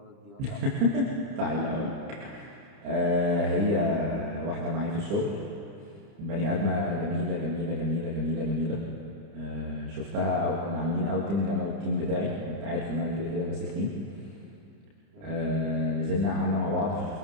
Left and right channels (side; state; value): left; late; 30 ms